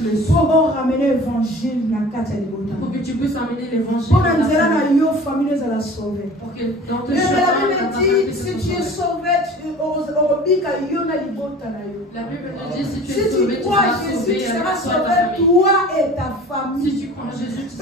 le souffle. Pour ramener l'évangile. Pour que tu puisses amener l'évangile. Pour que dans tes chemins, la Bible dit, si tu es sauvé, la Bible dit, si tu es sauvé, tu seras sauvé, tu seras sauvé, toi et ta famille. Si tu crois en Jésus, tu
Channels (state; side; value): normal; both; correlation 0.42